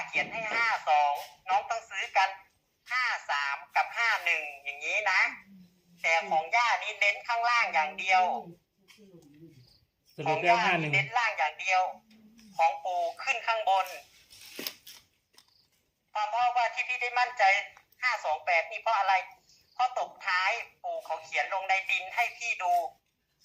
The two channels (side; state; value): both; identical; correlation 1.00